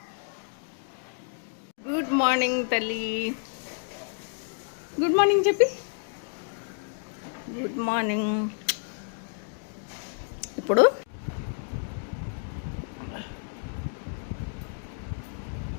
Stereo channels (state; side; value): silent; right; digital silence